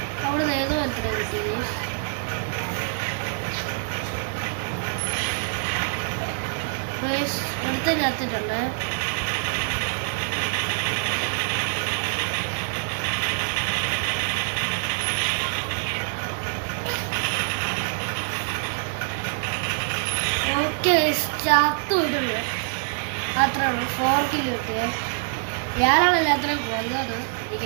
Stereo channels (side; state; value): left; silent; 57 dB below the other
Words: അവിടെ നിന്ന് ഏതോ ഒരുത്തനെ കിട്ടി. ഗൈസ് ഒരുത്തനെ കത്തിട്ടുണ്ട്. ചത്തു പോയിട്ടുണ്ട്. അത്രേ ഉള്ളൂ. 4 കിലോ കിട്ടിയേ. ഞാനാണല്ലോ അത്രയും കൊന്നത്,